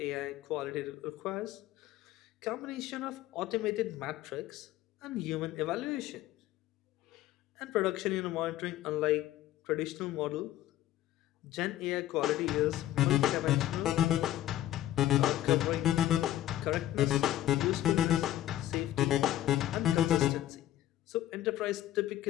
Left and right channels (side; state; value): right; quieter; 13.4 dB